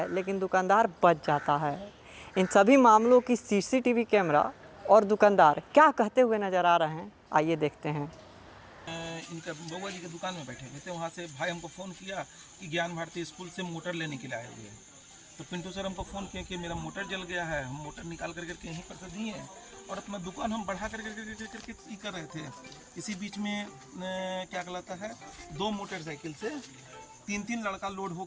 लेकिन दुकानदार बच जाता है। इन सभी मामलों की सीसीटीवी कैमरा और दुकानदार क्या कहते हुए नज़र आ रहे हैं, आइए देखते हैं। इनका बउआ जी की दुकान में बैठे हुए थे, वहाँ से भाई हमको फ़ोन किया कि ज्ञान भारती स्कूल से मोटर लेने के लिए आए हुए हैं। तो पिंटू सर हमको फ़ोन किया कि मेरा मोटर जल गया है। हम मोटर निकाल करके यहीं पर से दिए हैं और अपना दुकान हम बढ़ा करके कर रहे थे। इसी बीच में क्या कहलाता है 2 मोटरसाइकिल से 3 लड़का लोड हो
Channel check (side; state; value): both; identical; correlation 1.00